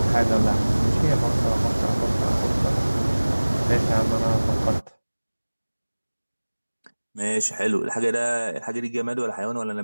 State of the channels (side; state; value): both; inverted; correlation -1.00